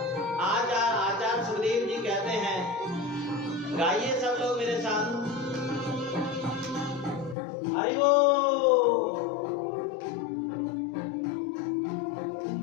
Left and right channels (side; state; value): right; drops out; at 7.4 s